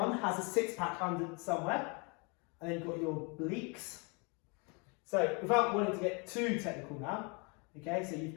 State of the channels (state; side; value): quieter; right; 32.0 dB